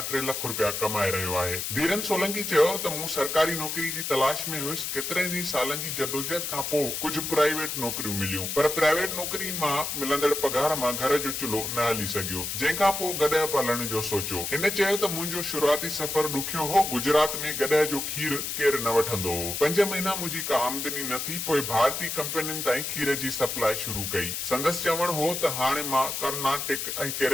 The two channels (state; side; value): noise; left; hiss, 3 dB below the sound